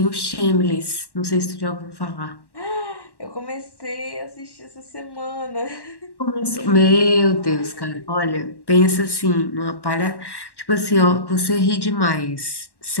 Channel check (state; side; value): late; right; 1.1 ms